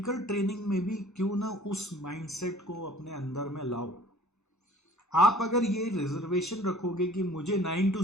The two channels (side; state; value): both; normal; correlation 0.50